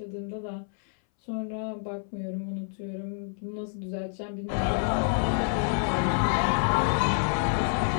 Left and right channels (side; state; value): right; silent; 59 dB below the other